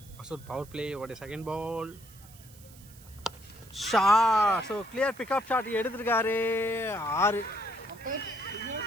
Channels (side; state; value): right; noise; hiss, 22 dB below the sound